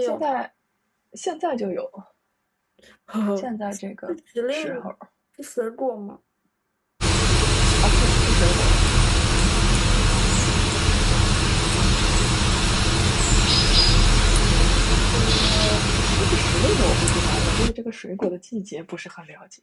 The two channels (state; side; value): identical; both; correlation 1.00